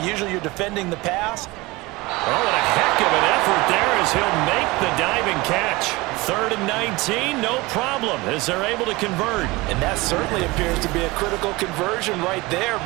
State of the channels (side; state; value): left; quieter; 22.3 dB